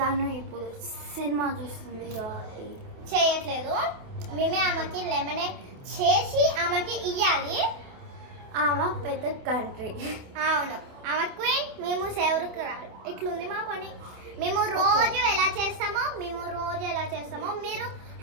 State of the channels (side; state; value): left; late; 27 ms